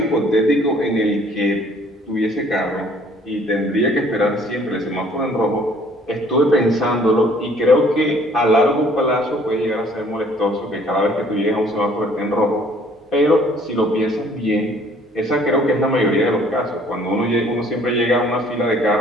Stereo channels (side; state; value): both; normal; correlation 0.58